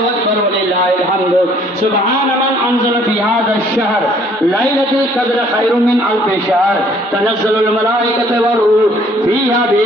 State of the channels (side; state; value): both; normal; correlation 0.60